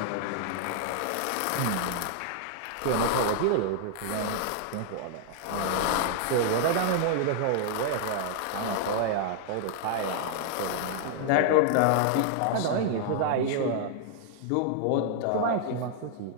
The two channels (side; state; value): both; different; correlation -0.01